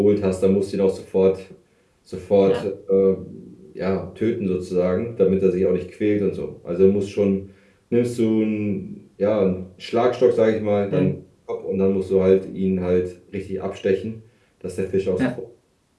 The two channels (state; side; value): identical; both; correlation 1.00